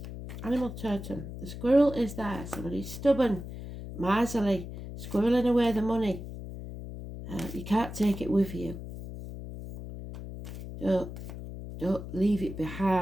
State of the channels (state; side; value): noise; left; hum, 10 dB below the sound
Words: Animal totem. The squirrel is there. Somebody's stubborn, miserly, squirreling away the money. You can't take it with you. Don't leave it